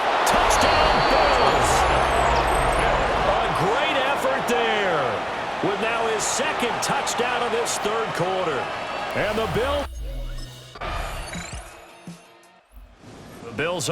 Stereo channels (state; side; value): identical; both; correlation 1.00